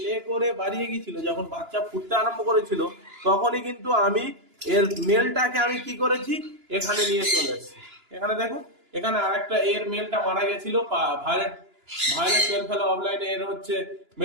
লে করে বাড়িয়ে গিয়েছিল, যখন বাচ্চা ফুটতে আরম্ভ করেছিল, তখনই কিন্তু আমি এর মেলটাকে আমি কি করেছি, এখানে নিয়ে চলে এসেছি। এখানে দেখুন, এখানে আরেকটা এর মেলটা মারা গেছিল, ভায়োলেট ভায়োলেট পেল ফেলো অফলাইনে এর হচ্ছে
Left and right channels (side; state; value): left; late; 2.9 ms